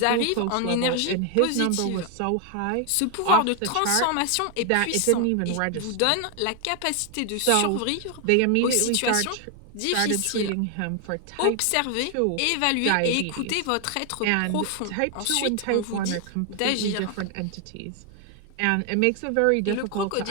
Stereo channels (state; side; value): different; both; correlation 0.00